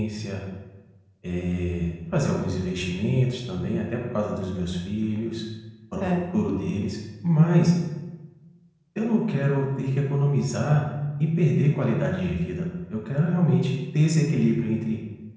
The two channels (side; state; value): both; identical; correlation 1.00